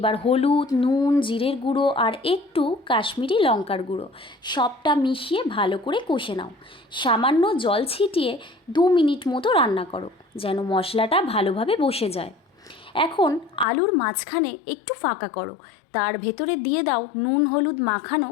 হলুদ, নুন, জিরের গুঁড়ো আর একটু কাশ্মীরি লঙ্কার গুঁড়ো সবটা মিশিয়ে ভালো করে কষে নাও। সামান্য জল ছিটিয়ে 2 মিনিট মতো রান্না করো, যেন মশলাটা ভালোভাবে বসে যায়। এখন আলুর মাঝখানে একটু ফাঁকা করো, তার ভেতরে দিয়ে দাও নুন হলুদ মাখানো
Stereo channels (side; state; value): right; drops out; at 13.7 s